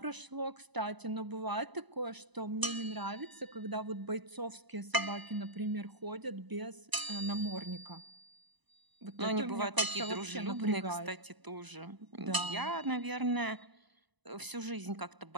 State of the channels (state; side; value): late; left; 1.0 ms